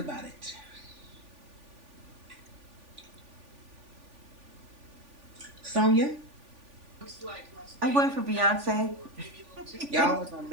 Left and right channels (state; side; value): late; left; 3.5 ms